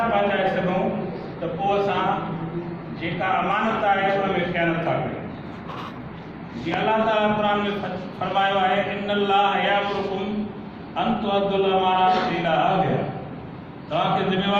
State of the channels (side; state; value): both; identical; correlation 1.00